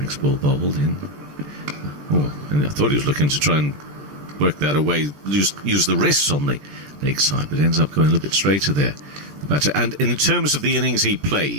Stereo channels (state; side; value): late; left; 14 ms